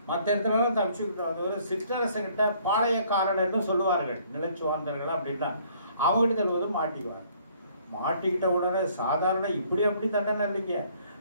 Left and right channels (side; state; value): both; inverted; correlation -0.62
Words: மற்ற இடத்துலலாம் தப்பிச்சுக்கிட்டு வந்தவர் சிற்றரசன்கிட்ட பாளையக்காரன்னு சொல்லுவார்கள், நிலச்சுவாந்தர்கள் அப்படின்னா. அவங்ககிட்ட தருவது மாட்டிக்குவார். மாட்டிக்கிட்ட உடனே சாதாரண இப்படி அப்படி தண்டனை இல்லைங்க,